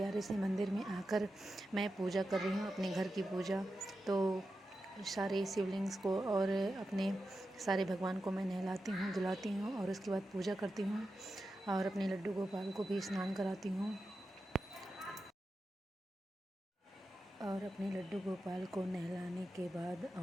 से मंदिर में आकर मैं पूजा कर रही हूँ, अपने घर की पूजा। तो सारे शिवलिंग्स को और अपने सारे भगवान को मैं नहलाती हूँ, धुलाती हूँ और उसके बाद पूजा करती हूँ और अपने लड्डू गोपाल को भी स्नान कराती हूँ। और अपने लड्डू गोपाल को नहलाने के बाद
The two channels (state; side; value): normal; both; correlation 0.90